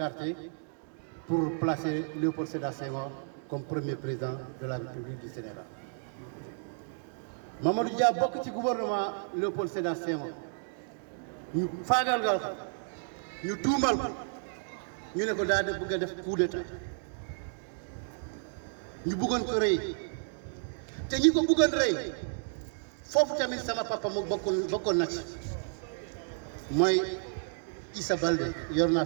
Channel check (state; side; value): silent; left; digital silence